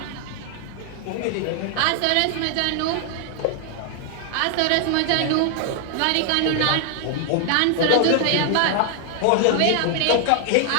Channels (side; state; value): both; different; correlation 0.00